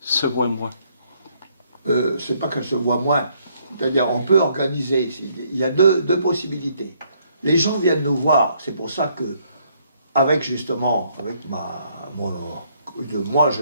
se voit moins? C'est pas qu'elle se voit moins. C'est-à-dire, on peut organiser. Il y a deux possibilités. Les gens viennent nous voir. C'est pour ça que, avec moi,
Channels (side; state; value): both; inverted; correlation -0.69